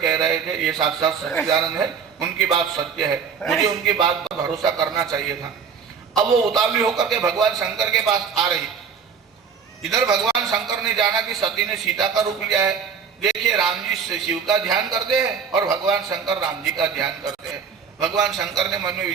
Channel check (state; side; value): quieter; left; 6.4 dB